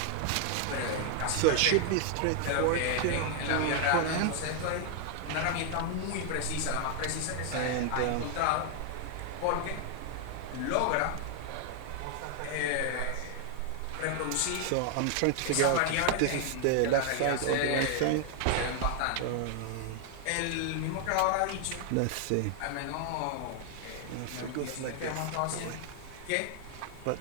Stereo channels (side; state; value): both; different; correlation 0.00